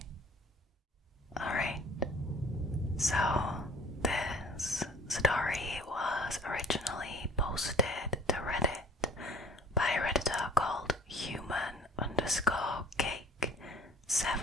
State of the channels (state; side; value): normal; both; correlation 0.50